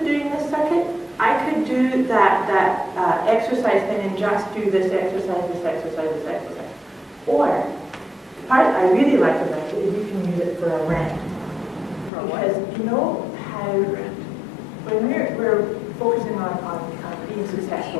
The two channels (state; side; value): drops out; right; at 12.1 s